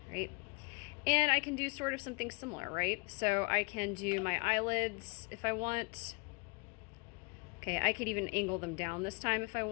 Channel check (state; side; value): quieter; right; 31.6 dB